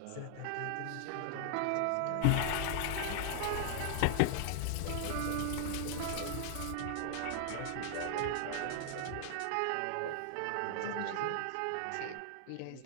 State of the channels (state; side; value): different; both; correlation 0.00